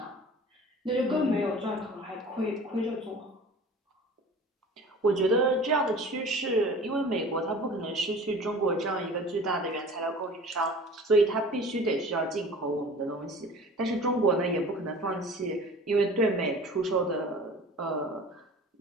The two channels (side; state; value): both; normal; correlation 0.42